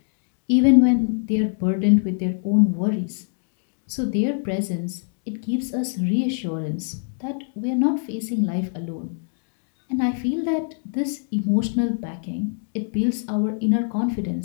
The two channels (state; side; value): silent; right; 63 dB below the other